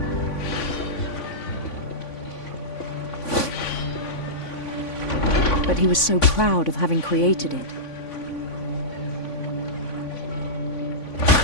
But he was so proud of having created it.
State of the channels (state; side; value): late; right; 3.5 ms